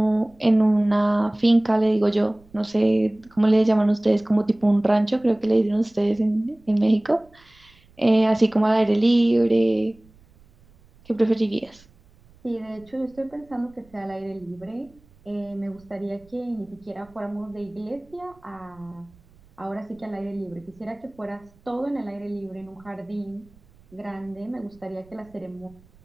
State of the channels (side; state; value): right; noise; rumble, 29 dB below the sound